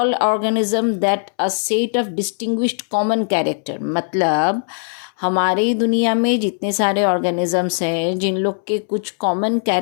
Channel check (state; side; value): silent; right; 66 dB below the other